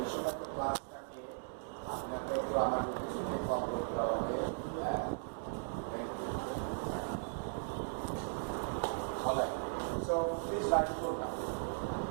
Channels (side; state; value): left; silent; digital silence